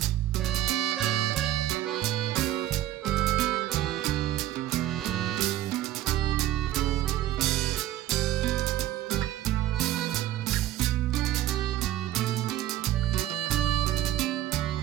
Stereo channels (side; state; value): left; quieter; 13.5 dB